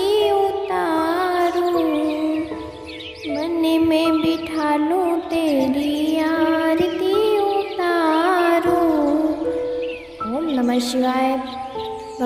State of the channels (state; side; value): identical; both; correlation 1.00